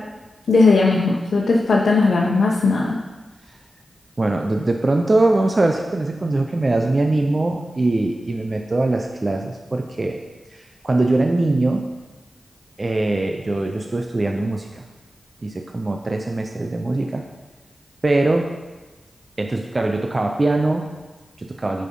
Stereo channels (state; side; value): normal; both; correlation 0.92